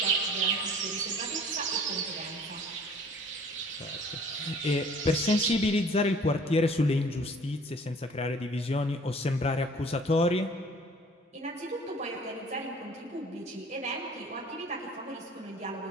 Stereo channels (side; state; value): both; normal; correlation 0.51